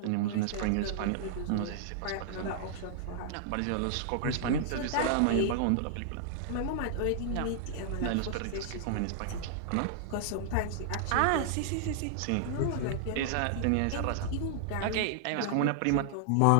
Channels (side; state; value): both; different; correlation -0.01